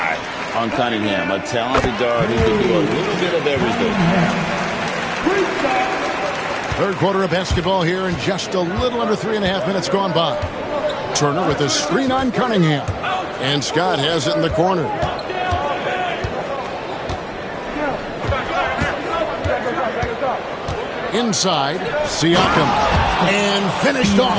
on Cunningham. A talented guard who can do a little bit of everything. Third quarter of basketball here, and just a little under 3.5 minutes gone by. Turner with a screen on Cunningham. And Scott has it in the corner. Inside, Siakam. And finished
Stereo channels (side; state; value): both; identical; correlation 1.00